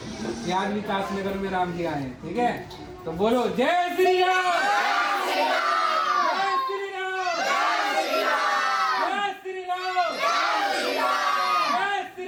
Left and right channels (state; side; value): identical; both; correlation 1.00